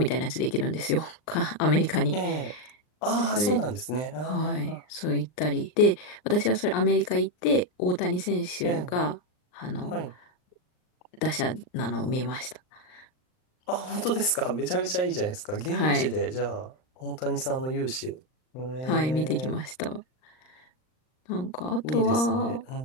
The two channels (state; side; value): late; right; 39 ms